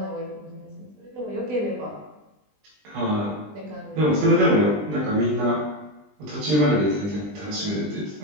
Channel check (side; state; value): left; late; 20 ms